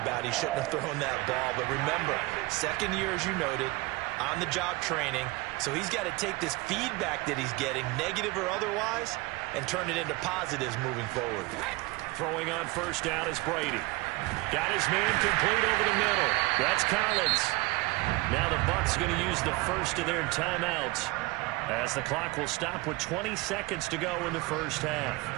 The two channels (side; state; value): left; quieter; 22.6 dB